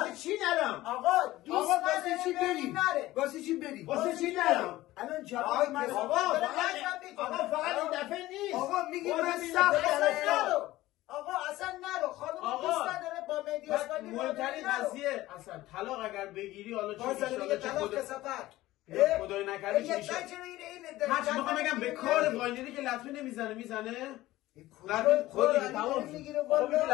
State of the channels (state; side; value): quieter; right; 16.7 dB